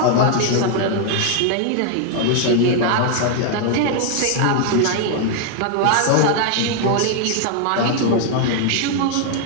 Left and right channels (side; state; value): both; different; correlation 0.00